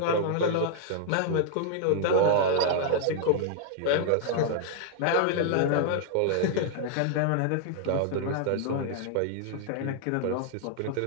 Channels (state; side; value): different; both; correlation 0.00